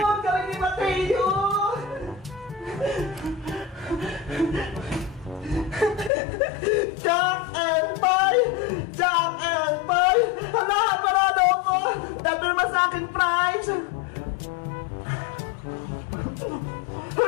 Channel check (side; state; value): right; drops out; at 6.1 s